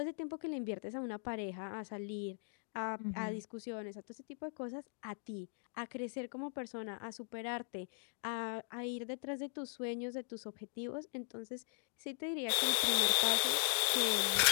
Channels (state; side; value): silent; right; digital silence